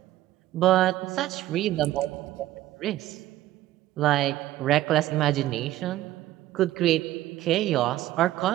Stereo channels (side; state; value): left; quieter; 14.7 dB